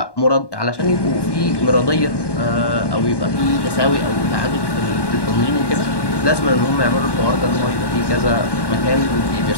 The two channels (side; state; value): right; late; 1.1 ms